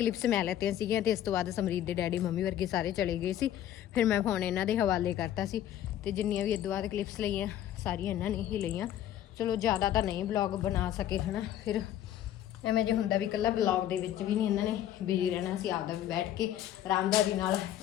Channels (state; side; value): quieter; right; 11.7 dB